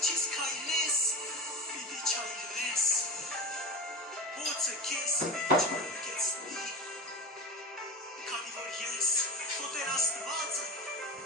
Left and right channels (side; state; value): both; normal; correlation 0.27